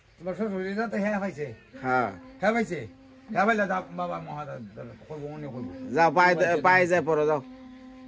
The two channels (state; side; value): identical; both; correlation 1.00